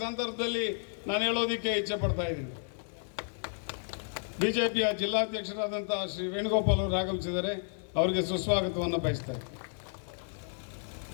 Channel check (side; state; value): right; silent; 56 dB below the other